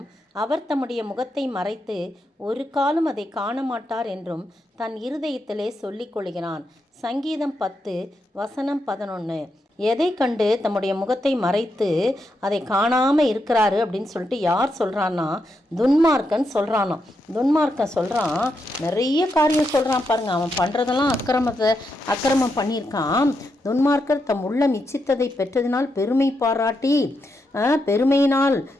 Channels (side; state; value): both; normal; correlation 0.83